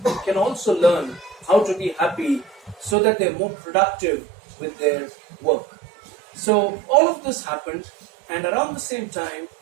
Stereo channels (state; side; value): drops out; left; at 3.0 s